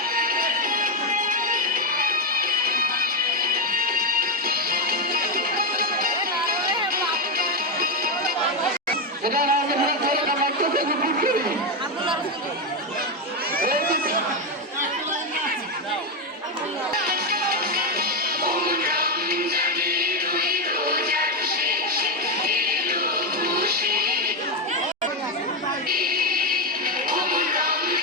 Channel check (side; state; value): both; normal; correlation 0.08